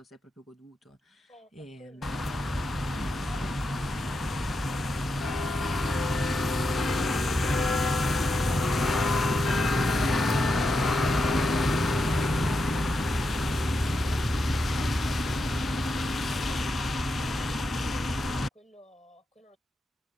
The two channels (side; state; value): both; normal; correlation 0.86